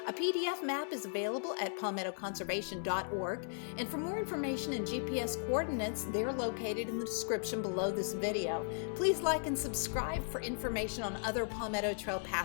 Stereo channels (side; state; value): right; silent; 53 dB below the other